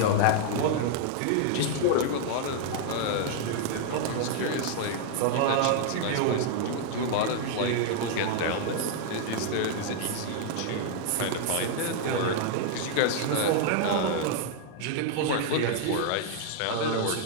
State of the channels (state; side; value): different; both; correlation 0.00